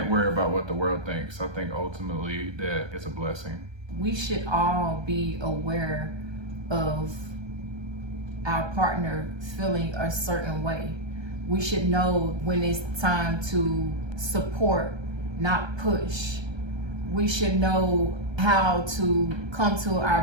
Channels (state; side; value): late; left; 1.3 ms